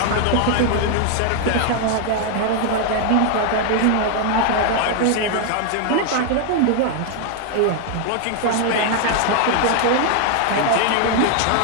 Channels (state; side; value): different; both; correlation 0.00